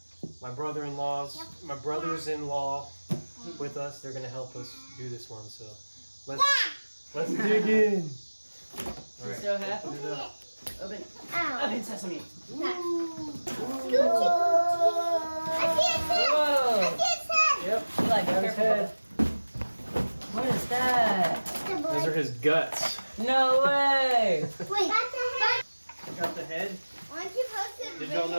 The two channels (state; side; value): inverted; both; correlation -1.00